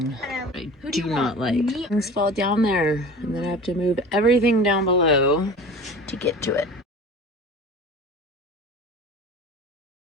I do not like. Things fall down there, and then I have to move everything down below to get to it.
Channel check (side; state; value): both; normal; correlation 0.38